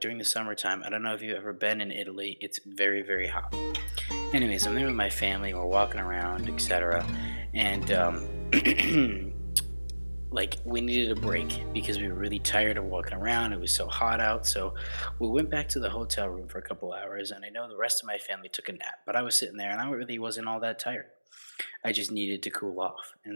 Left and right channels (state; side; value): inverted; both; correlation -1.00